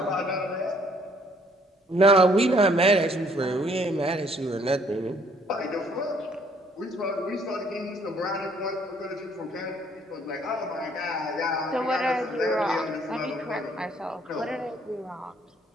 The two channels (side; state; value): both; normal; correlation 0.63